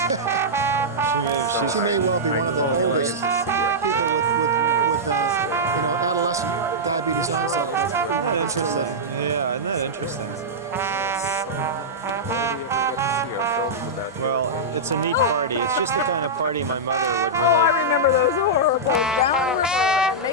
She may well be one of the oldest people with adolescent diabetes onset. Isn't that interesting? Yeah, isn't that interesting? Well, it's a neat party. It's just the kind of party my mother would really.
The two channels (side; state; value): both; normal; correlation -0.10